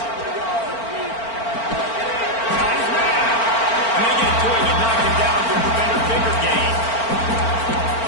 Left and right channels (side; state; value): right; late; 4.4 ms